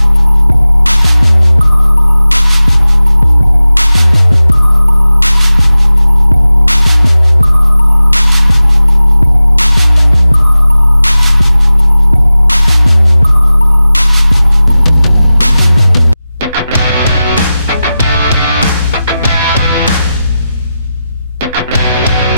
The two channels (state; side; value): inverted; both; correlation -0.94